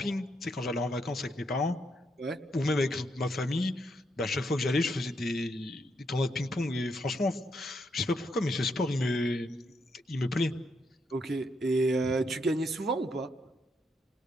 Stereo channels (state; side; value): normal; both; correlation 0.78